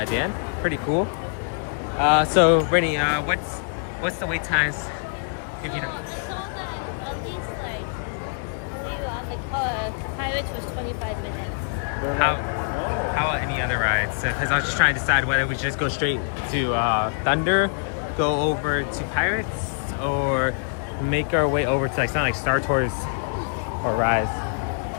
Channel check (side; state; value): right; silent; digital silence